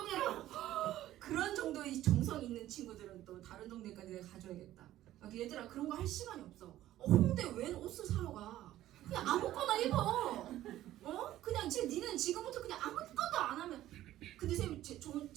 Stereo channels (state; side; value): quieter; left; 13.9 dB